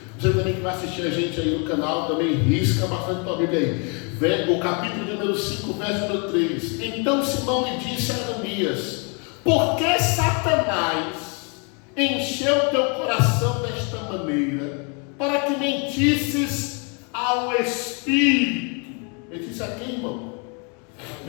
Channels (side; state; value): right; quieter; 35.6 dB